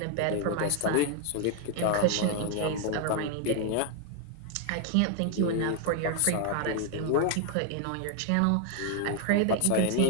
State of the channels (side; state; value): both; different; correlation 0.00